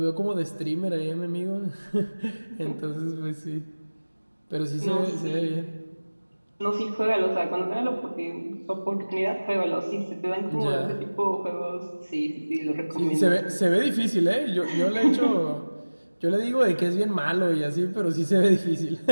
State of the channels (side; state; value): both; inverted; correlation -1.00